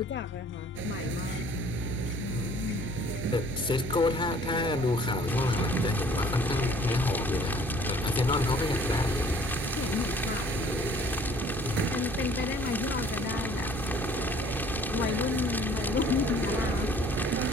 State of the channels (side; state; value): both; normal; correlation 0.55